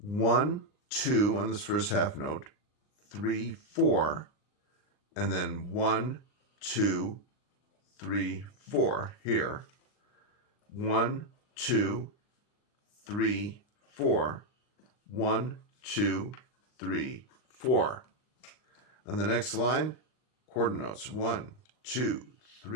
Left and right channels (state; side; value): late; right; 39 ms